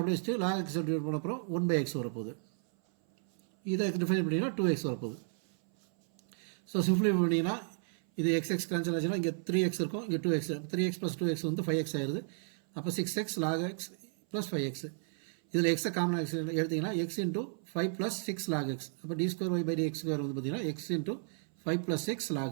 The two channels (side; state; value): left; silent; 56 dB below the other